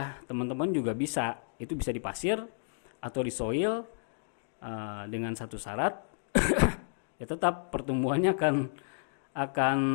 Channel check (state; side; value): silent; right; digital silence